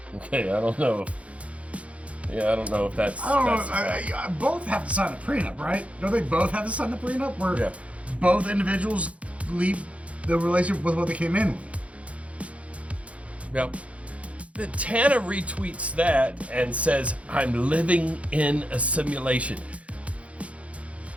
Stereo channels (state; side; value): late; left; 0.064 ms